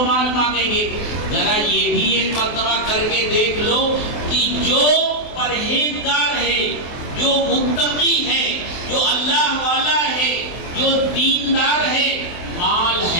مال مانگیں گے۔ ذرا یہ بھی ایک مرتبہ کر کے دیکھ لو کہ جو پرہیزگار ہے، جو متقی ہے، جو اللہ والا ہے، جو دیندار ہے، مال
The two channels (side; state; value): right; late; 23 ms